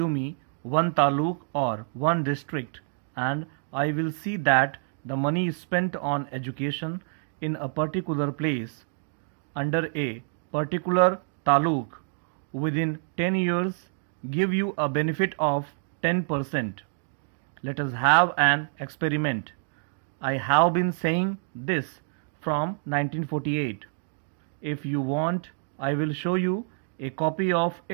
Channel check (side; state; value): left; silent; digital silence